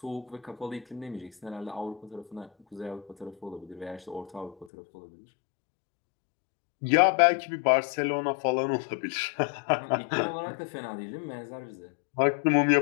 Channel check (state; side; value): drops out; right; at 4.7 s